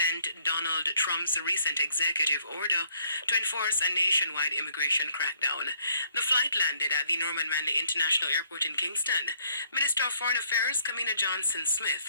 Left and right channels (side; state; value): both; inverted; correlation -0.65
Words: Donald Trump's recent executive order to enforce a nationwide immigration crackdown. The flight landed at the Norman Manley International Airport in Kingston. Minister of Foreign Affairs, Kamina Johnson-Smith,